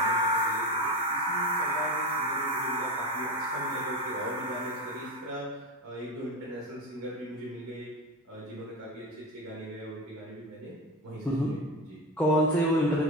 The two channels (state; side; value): normal; both; correlation 0.20